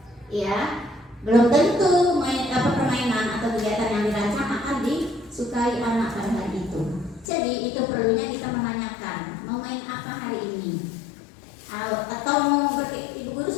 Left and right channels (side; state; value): right; drops out; at 7.2 s